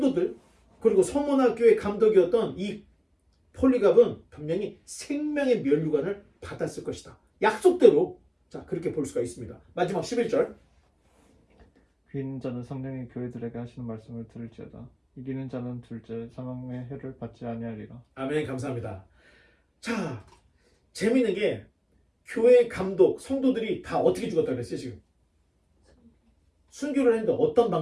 그리고 서머나 교회 감독이었던 이 폴리갑은 분명히 생명의 면류관을 받았을 것이다. 약속대로. 자, 그렇게 볼 수가 있습니다. 마지막 11절. 귀 있는 자는 성령이 교회들에게 하시는 말씀을 들을지어다. 이기는 자는 둘째 사망의 해를 받지 아니하리라. 아멘. 감사합니다. 자, 재미있는 게 교회 감독, 성도들이 다 어떻게 죽었다 그랬어요 지금? 순교를 했는데 어떤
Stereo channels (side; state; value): both; identical; correlation 1.00